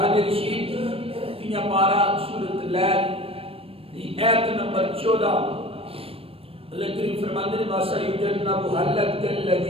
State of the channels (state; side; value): late; left; 0.28 ms